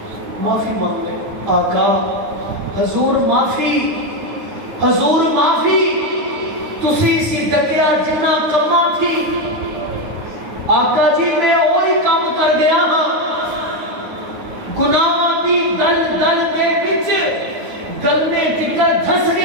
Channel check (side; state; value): left; late; 9.5 ms